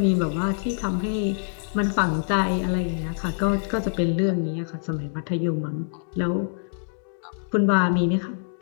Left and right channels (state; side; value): silent; right; digital silence